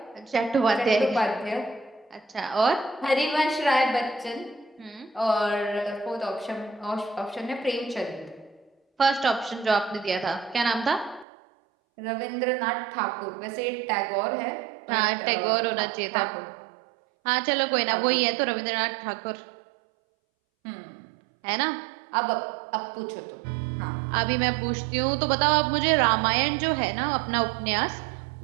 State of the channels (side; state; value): left; drops out; at 11.2 s